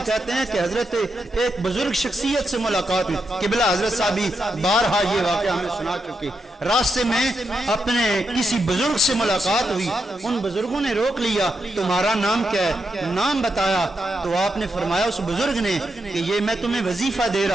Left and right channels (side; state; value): both; normal; correlation 0.84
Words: کہتے ہیں کہ حضرت ایک بزرگ شخصیت سے ملاقات ہوئی، قبلہ حضرت صاحبی بارہا یہ واقعہ ہمیں سنا چکے، راستے میں اپنے کسی بزرگ سے ملاقات ہوئی، ان بزرگوں نے روک لیا تمہارا نام کیا ہے؟ نام بتایا، تو آپ نے فرمایا اس بزرگ نے کہ یہ میں تمہیں وظیفہ دے